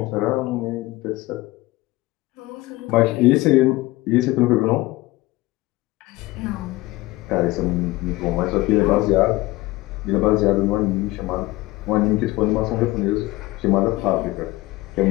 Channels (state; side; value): quieter; right; 19.3 dB